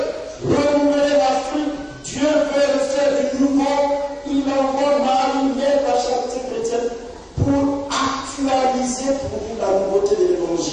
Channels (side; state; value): both; identical; correlation 1.00